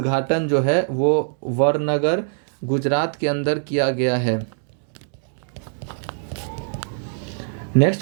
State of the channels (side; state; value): left; silent; digital silence